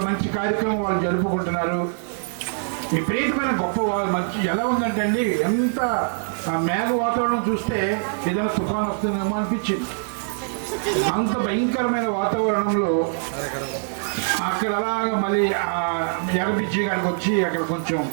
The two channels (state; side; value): silent; left; digital silence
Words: మంచి కార్యక్రమం వాళ్ళు జరుపుకుంటున్నారు. విపరీతమైన గొప్ప మంచి ఎలా ఉందంటే అండి, ఎంత ఆ మేఘ వాతావరణం చూస్తే ఏదైనా తుఫాన్ వస్తుందేమో అనిపించింది. అంత భయంకరమైన వాతావరణంలో అక్కడ అలాగా మళ్ళీ ఆ ఎగబిచ్చి కాడికి వచ్చి అక్కడ కొంచెం